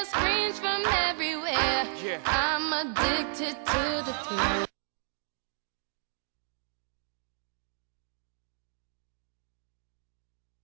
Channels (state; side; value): silent; left; digital silence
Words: screams from everywhere. I'm addicted to the thrill.